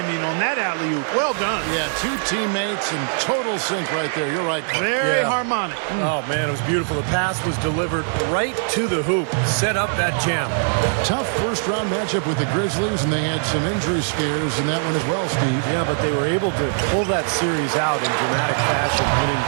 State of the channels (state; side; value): silent; left; 65 dB below the other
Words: on that alley-oop? Well done. Yeah, 2 teammates in total sync right there. You're right. Very harmonic. Oh, man, it was beautiful. The pass was delivered right to the hoop. Set up that jam. Tough first-round matchup with the Grizzlies, and they had some injury scares in that one as well, Steve. Yeah, but they were able to pull that series out in dramatic fashion, winning